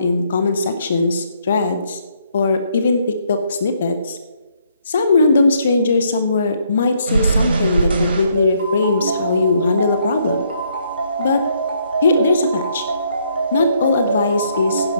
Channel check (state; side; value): inverted; both; correlation -0.71